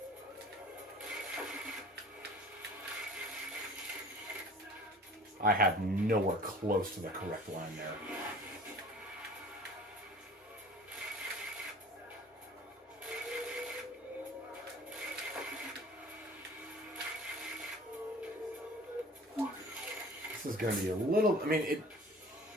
I had nowhere close to the correct line there. This is going to be a little... I mean,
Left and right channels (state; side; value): normal; both; correlation 0.46